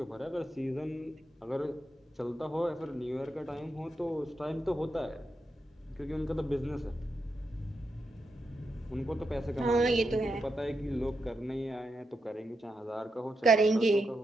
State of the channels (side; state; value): both; normal; correlation 0.85